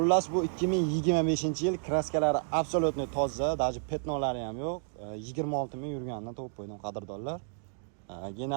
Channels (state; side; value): silent; left; digital silence